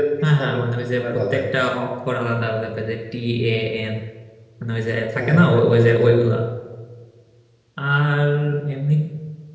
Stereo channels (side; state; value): both; identical; correlation 1.00